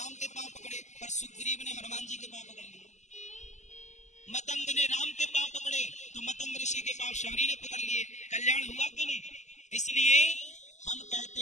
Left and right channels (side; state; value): right; late; 0.34 ms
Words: के पांव पकड़े, पर सुग्रीव ने हनुमान जी के पांव पकड़ लिए। मतंग ने राम के पांव पकड़े, तो मतंग ऋषि के पांव शबरी ने पकड़ लिए। कल्याण हुआ कि नहीं? इसलिए हम कहते